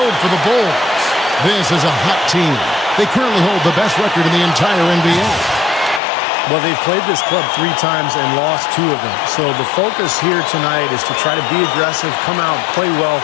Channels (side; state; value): right; drops out; at 6.0 s